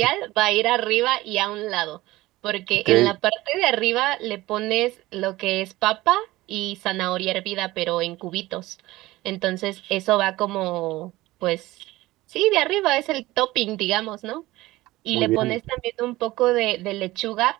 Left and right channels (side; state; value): left; quieter; 18.3 dB